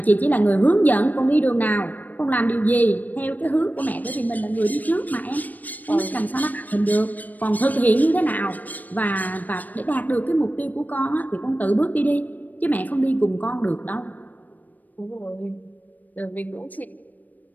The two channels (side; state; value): right; late; 0.082 ms